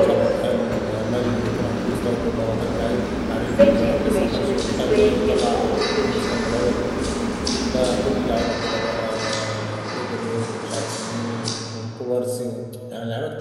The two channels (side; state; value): both; identical; correlation 1.00